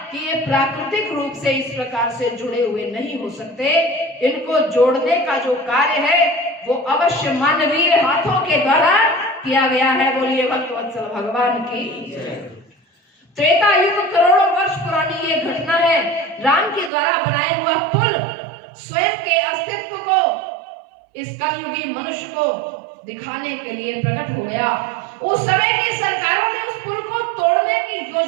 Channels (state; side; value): drops out; left; at 16.9 s